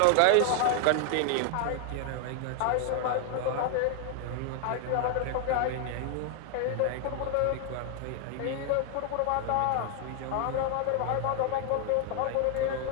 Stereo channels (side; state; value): both; different; correlation 0.00